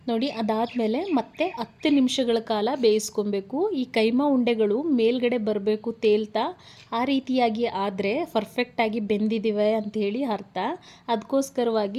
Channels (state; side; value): identical; both; correlation 1.00